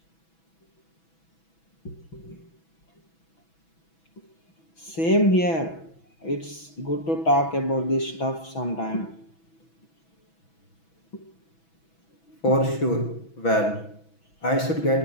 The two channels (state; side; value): late; right; 6.1 ms